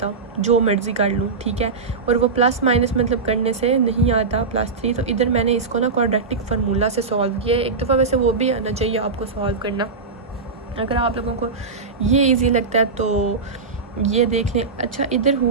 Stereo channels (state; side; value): quieter; left; 4.4 dB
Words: जो मर्ज़ी कर लूँ। ठीक है, और वो प्लस माइनस मतलब करने से नहीं आता +3, तो इधर मैंने इसको ना क्वाड्रेटिक फार्मूला से सॉल्व किया है। एक दफ़ा वैसे वो भी आना चाहिए आपको सॉल्व करना, अगर आप लोगों को ये ईजी लगता है तो ये देख लें। अच्छा इधर